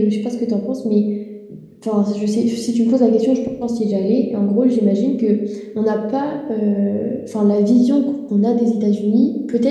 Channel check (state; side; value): identical; both; correlation 1.00